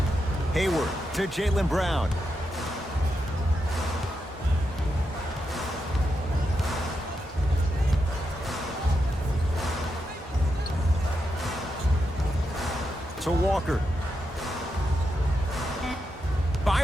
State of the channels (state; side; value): normal; both; correlation 0.85